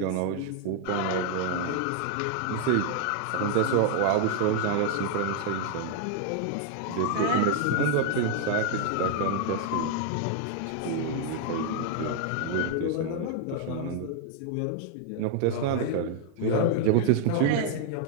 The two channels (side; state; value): both; different; correlation 0.00